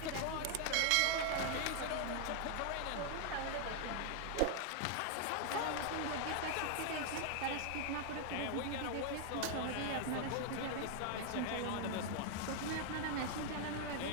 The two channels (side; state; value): both; different; correlation 0.00